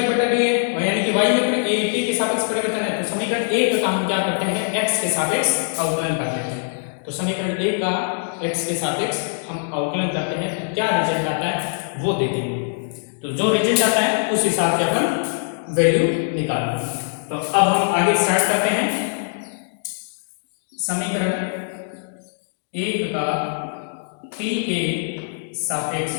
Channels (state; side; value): silent; right; digital silence